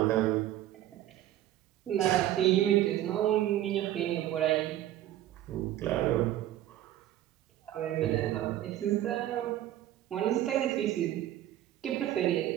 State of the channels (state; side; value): quieter; left; 13.2 dB